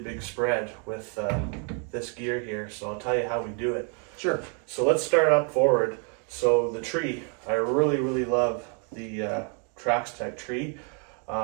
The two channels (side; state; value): left; quieter; 39.5 dB